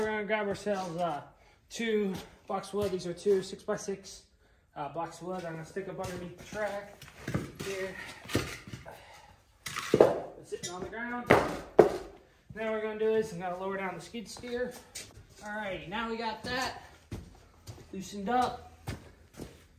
going to grab ourselves 2 blocks of wood. These are 2 6x6 blocks of wood. I'm going to stick up underneath the track here. It's sitting on the ground. Now what we're going to do is I'm going to lower down the skid steer. Alrighty, now we got that loosened up.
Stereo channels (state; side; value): identical; both; correlation 1.00